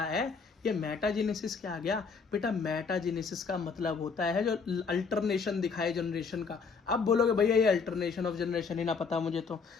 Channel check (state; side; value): quieter; right; 5.3 dB